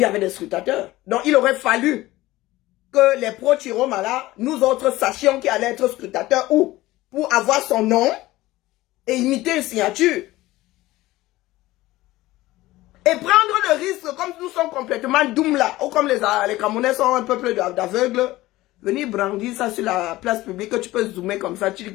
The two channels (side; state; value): right; quieter; 17.6 dB